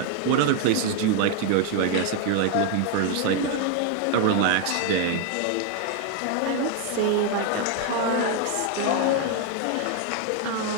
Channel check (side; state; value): both; different; correlation 0.00